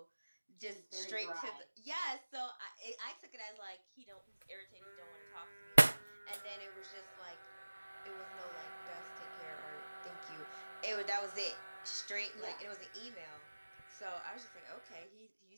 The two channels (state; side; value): inverted; both; correlation -1.00